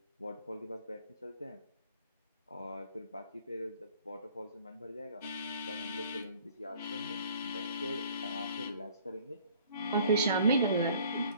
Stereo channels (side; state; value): both; inverted; correlation -0.55